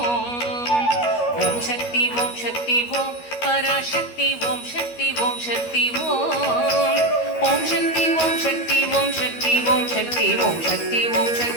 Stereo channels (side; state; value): right; late; 13 ms